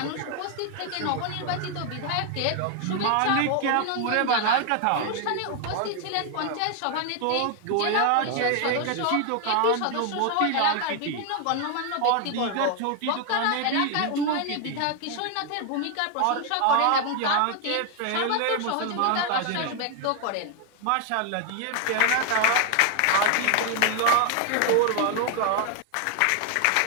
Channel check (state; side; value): different; both; correlation 0.01